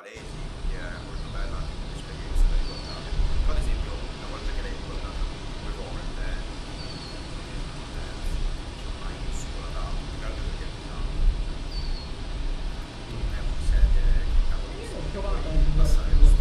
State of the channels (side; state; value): both; identical; correlation 1.00